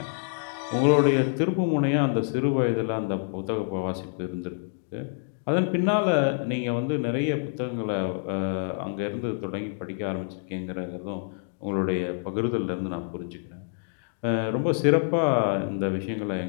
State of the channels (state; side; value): silent; right; digital silence